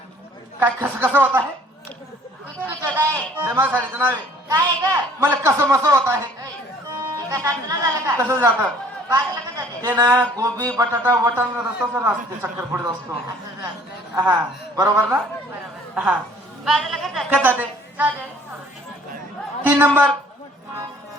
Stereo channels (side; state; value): both; normal; correlation 0.56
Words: काय कसं होत आहे कुछ कुछ होता है ते माझ्या साडीचं नाव आहे काय आहे ग मला कसं मसं होत आहे एका साडीचं नाव झालं का कसं जातं बाजूला का जाते ते ना गोबी बटाटा वटाण रस्ता सर असते चक्कर पुढे असतो असं झालं हा बरोबर ना बरोबर हा बाजूला का जाते काय जाते चालेल 3 नंबर